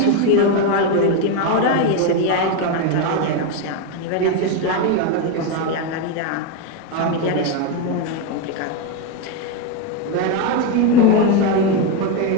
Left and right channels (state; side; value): different; both; correlation 0.03